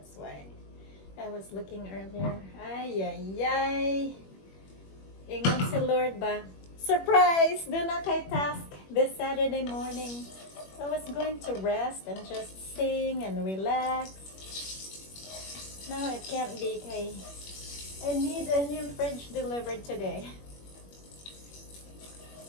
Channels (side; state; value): right; late; 21 ms